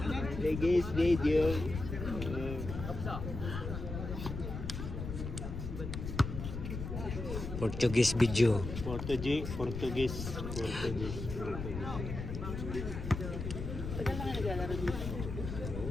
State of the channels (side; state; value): left; noise; rumble, 6 dB below the sound